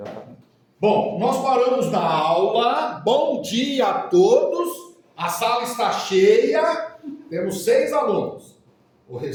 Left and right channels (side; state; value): both; identical; correlation 1.00